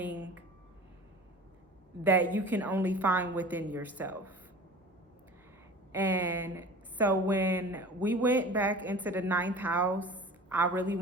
that you can only find within yourself. And so when we went back into the ninth house, I really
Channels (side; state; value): both; normal; correlation 0.40